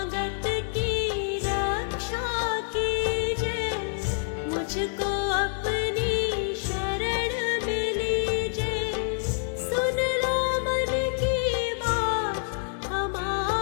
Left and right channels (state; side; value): silent; right; 60 dB below the other